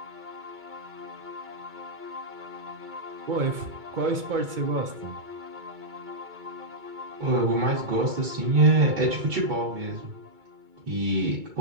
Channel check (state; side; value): late; left; 2.2 ms